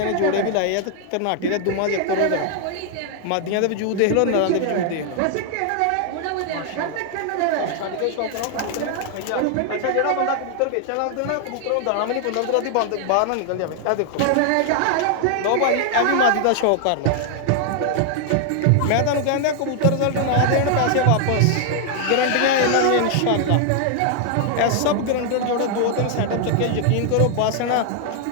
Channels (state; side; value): different; both; correlation 0.00